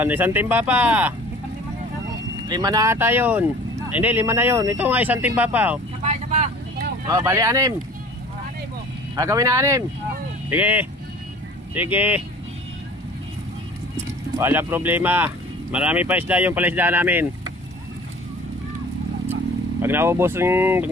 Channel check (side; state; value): both; normal; correlation 0.45